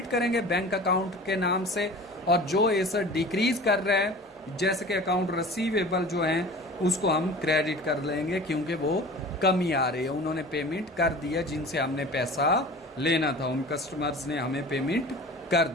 करेंगे बैंक अकाउंट के नाम से, और जो एसेट डिक्रीज कर रहा है जैसे कि अकाउंट रिसीवेबल जो है उसको हम क्रेडिट कर लेंगे, क्योंकि वो कमी आ रही है, उन्होंने पेमेंट कर दिया जिनसे हमने पैसा लेना था, उन कस्टमर्स ने हमें पेमेंट कर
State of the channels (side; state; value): both; normal; correlation 0.40